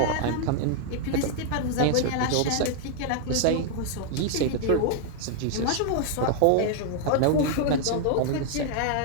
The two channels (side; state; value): both; different; correlation 0.00